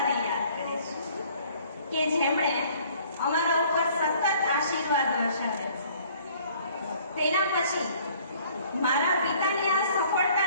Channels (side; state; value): both; inverted; correlation -0.56